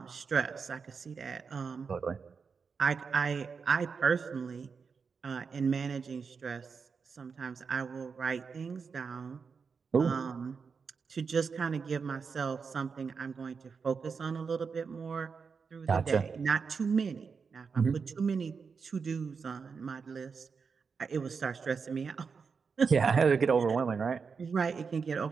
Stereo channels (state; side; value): quieter; left; 5.5 dB